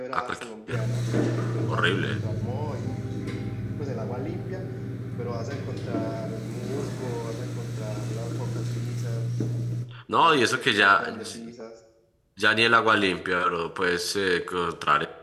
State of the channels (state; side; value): identical; both; correlation 1.00